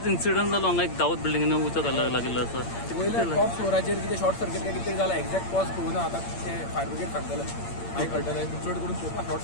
इन्सिडंट जालो हांगा एक दावत बिल्डिंगेन उचो लागलो आसा वयल्या टॉप फ्लोराचेर कितें शॉर्ट सर्किट काय कितें जाला एक्झॅक्ट कॉज कळूना आतां ते फायर ब्रिगेड सांगतले मागीर कळटलें चड करून चोवपाक शॉर्ट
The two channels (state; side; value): late; right; 8.7 ms